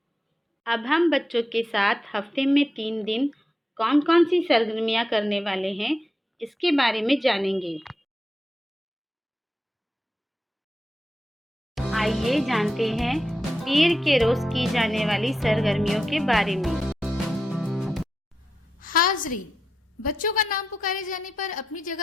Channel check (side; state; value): both; normal; correlation 0.87